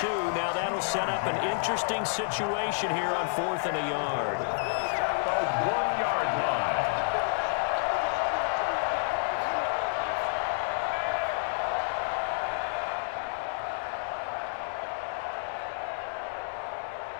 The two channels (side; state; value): right; silent; digital silence